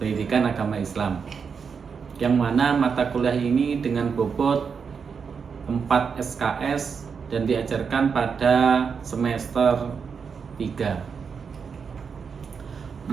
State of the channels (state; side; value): quieter; left; 6.1 dB